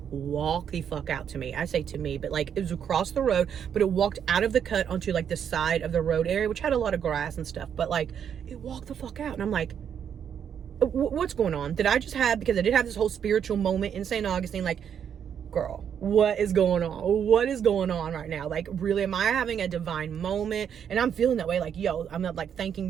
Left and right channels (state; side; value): quieter; left; 8.3 dB